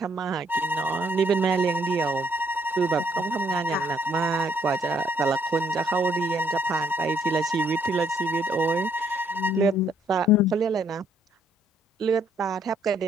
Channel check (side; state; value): both; normal; correlation 0.68